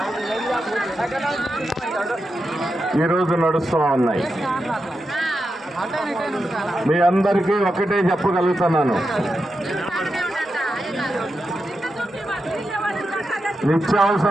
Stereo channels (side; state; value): both; normal; correlation 0.88